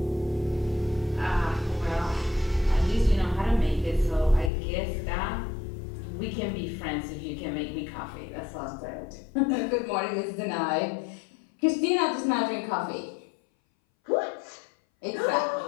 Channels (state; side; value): drops out; right; at 4.5 s